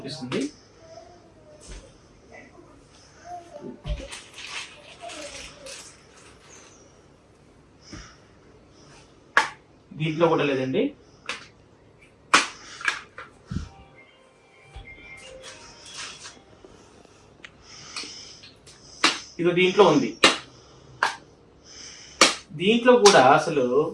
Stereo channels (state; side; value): identical; both; correlation 1.00